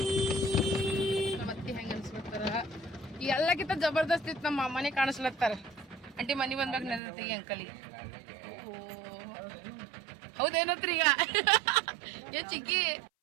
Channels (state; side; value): drops out; left; at 7.0 s